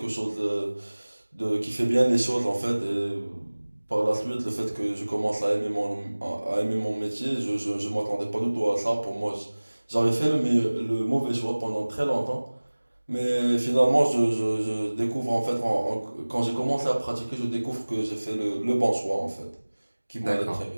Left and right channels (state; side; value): inverted; both; correlation -1.00